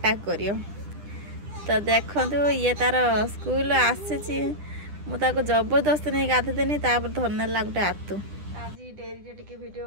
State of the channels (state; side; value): late; left; 10 ms